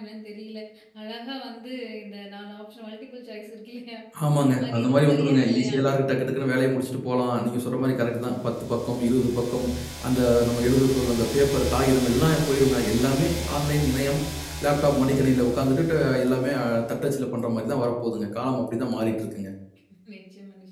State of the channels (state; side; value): identical; both; correlation 1.00